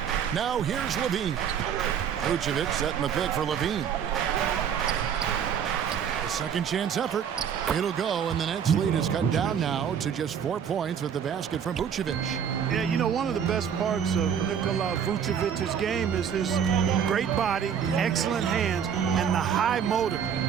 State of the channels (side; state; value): left; quieter; 8.0 dB